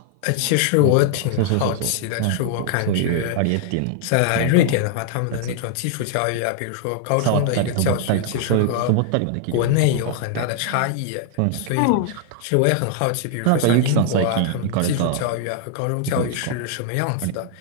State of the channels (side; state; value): both; different; correlation 0.00